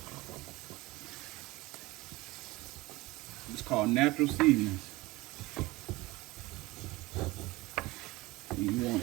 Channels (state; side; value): quieter; left; 20.8 dB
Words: It's called natural seasonings. You